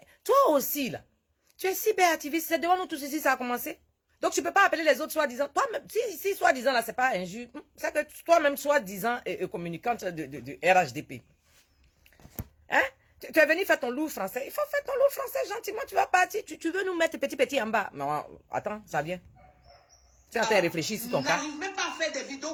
toi aussi là, tu es cyberactiviste, c'est devant nous tous ici ça a commencé. Donc tu ne peux pas appeler les autres soi-disant. Toi-même, si soi-disant là c'est pas injuste, c'est que toi-même soi-disant communicante de RHDP. Hein? Tu es venu faire ton loup français. Il faut faire ton loup français gentiment. Tu vas partir. Tu veux nous mettre petit en bas. Non, attends, ça vient. Tu es en train de réfléchir sur ton cas. N'arrivent même pas à faire des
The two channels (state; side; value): identical; both; correlation 1.00